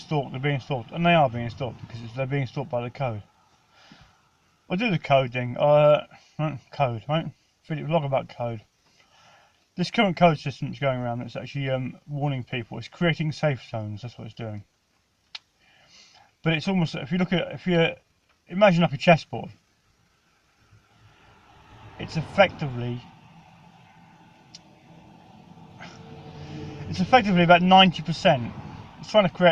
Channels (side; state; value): both; identical; correlation 1.00